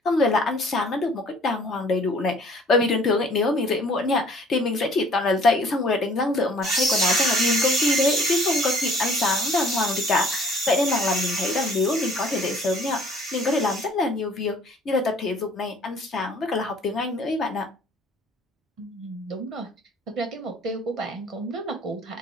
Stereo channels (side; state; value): both; normal; correlation 0.54